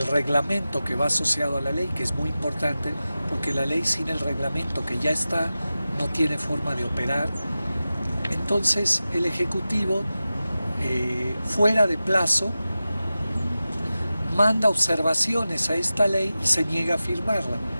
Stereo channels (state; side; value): inverted; both; correlation -0.94